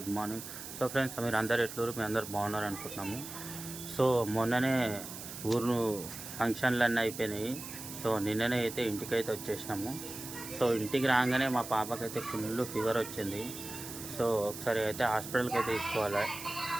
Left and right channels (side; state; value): right; noise; hiss, 10 dB below the sound